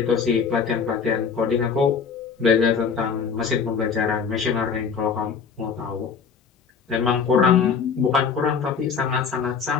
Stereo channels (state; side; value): quieter; right; 6.1 dB